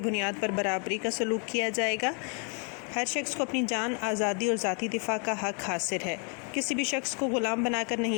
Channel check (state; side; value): quieter; right; 38.3 dB